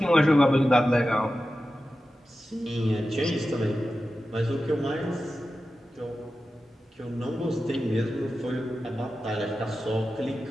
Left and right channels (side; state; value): both; normal; correlation 0.93